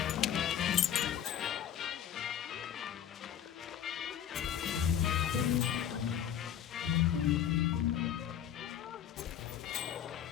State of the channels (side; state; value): right; quieter; 9.7 dB